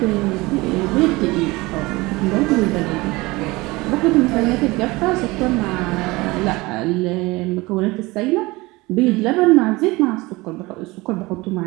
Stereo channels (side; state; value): left; quieter; 22.0 dB